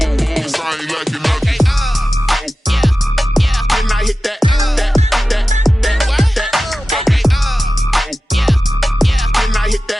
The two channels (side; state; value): both; normal; correlation 0.94